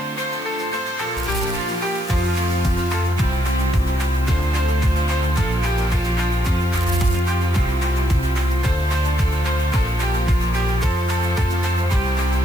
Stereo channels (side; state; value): right; noise; hiss, 21 dB below the sound